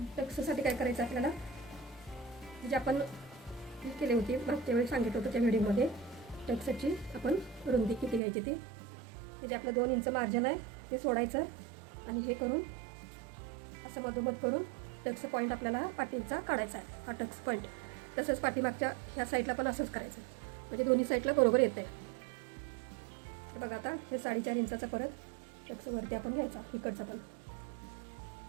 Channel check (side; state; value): left; drops out; at 8.2 s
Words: टक्ससाठी काय करायचं आपल्याला, जे आपण केली होती मागच्या वेळी सांगितलं होतं त्या व्हिडिओमध्ये, टक्सची आपण रुंदी किती घ्यायची ती, म्हणजे आपलं 2 इंच मार्जिन आहे ते सोडायचं आणि हे करून असं मधोमध करून टक्स पॉईंट आपल्याला पाठीचा काढायचा आहे, हा टक्स पॉईंट. तसंच पाठीमागच्या ह्या साईडला पण असंच करायचं, म्हणजे दोन्ही साईडला बरोबर येतं आहे. बघा आता हे 4.5 इंचाचा परत टक्स वरती आपण घ्यायचा, इकडचा पण